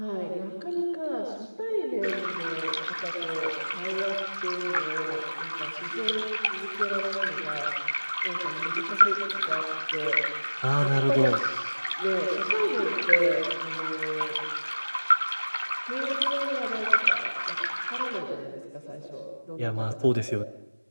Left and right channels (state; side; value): inverted; both; correlation -1.00